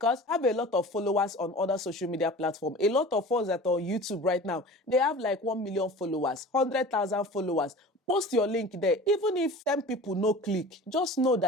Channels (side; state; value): both; normal; correlation 0.39